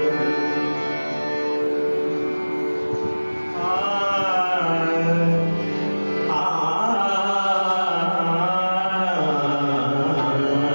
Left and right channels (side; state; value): both; inverted; correlation -1.00